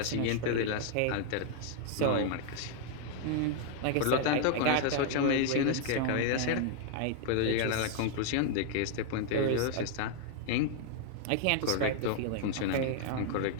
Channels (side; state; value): both; different; correlation 0.00